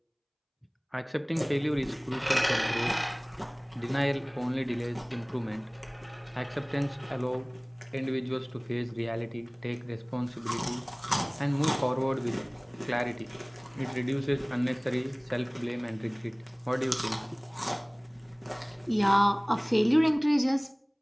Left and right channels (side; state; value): both; identical; correlation 1.00